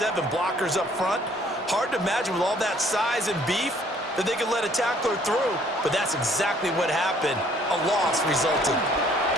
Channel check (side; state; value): both; normal; correlation 0.61